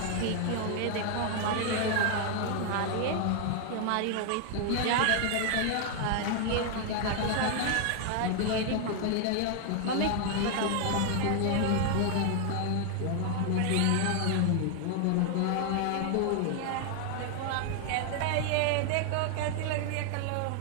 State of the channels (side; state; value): both; different; correlation 0.00